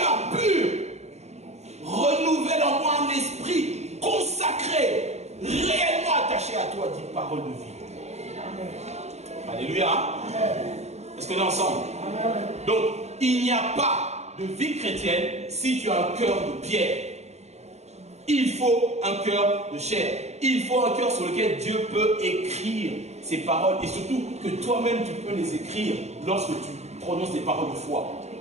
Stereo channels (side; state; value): left; late; 0.32 ms